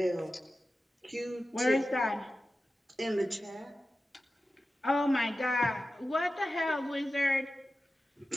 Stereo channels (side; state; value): both; normal; correlation 0.94